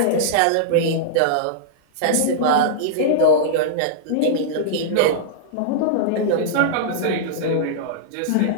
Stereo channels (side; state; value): both; different; correlation -0.02